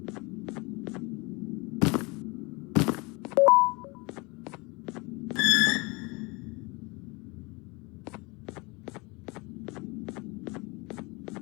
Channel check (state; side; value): quieter; right; 26.6 dB